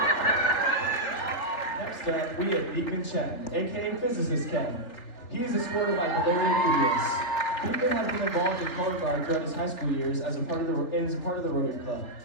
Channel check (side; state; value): right; late; 3.4 ms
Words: Next up, we have Beekman Chen, aka Physicist Ken. He is escorted by Valeria Curious. Beekman has been involved in color guard throughout his high school years as a part of the Rotary Club.